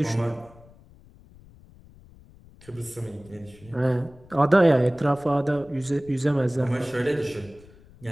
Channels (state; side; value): noise; left; rumble, 24 dB below the sound